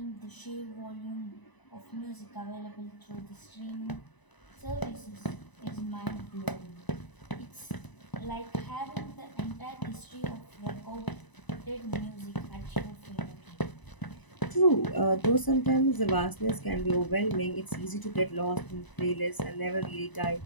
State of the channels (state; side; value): late; right; 1.0 ms